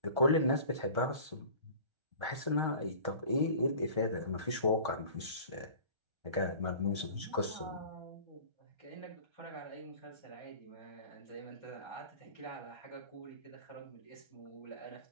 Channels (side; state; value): left; late; 1.3 ms